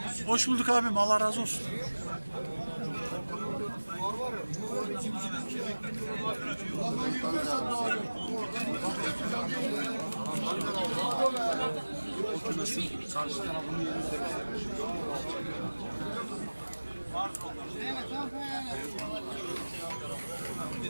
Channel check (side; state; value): both; inverted; correlation -1.00